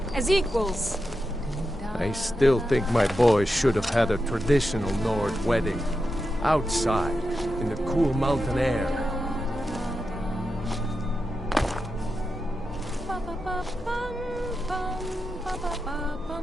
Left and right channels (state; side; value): normal; both; correlation 0.89